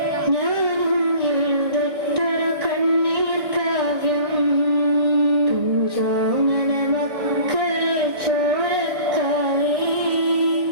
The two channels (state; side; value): late; left; 1.6 ms